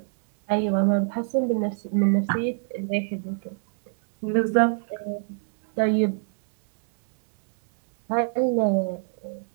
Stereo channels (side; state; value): left; silent; digital silence